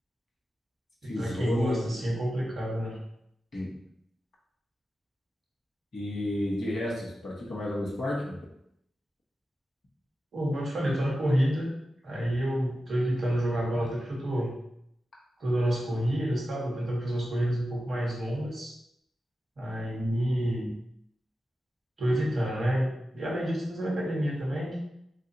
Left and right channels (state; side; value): normal; both; correlation 0.92